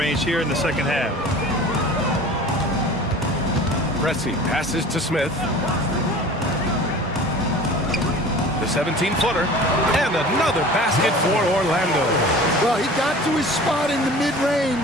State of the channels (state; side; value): normal; both; correlation 0.41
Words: here in the second half. Pressey passes to Smith. The 17-footer. And another basket for Orlando. Well, he got to his spot in the